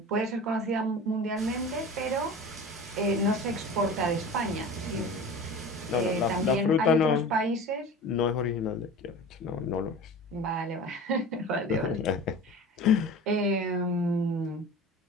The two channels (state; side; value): normal; both; correlation 0.36